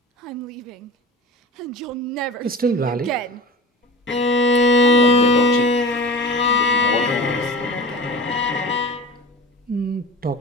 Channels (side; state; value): both; normal; correlation 0.35